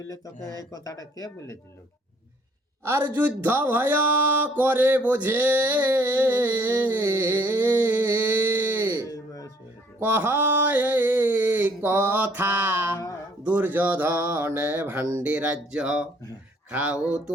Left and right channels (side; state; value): both; normal; correlation 0.61